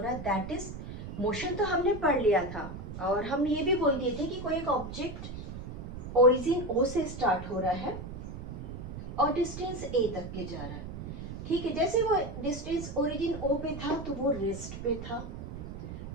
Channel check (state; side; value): noise; right; rumble, 9 dB below the sound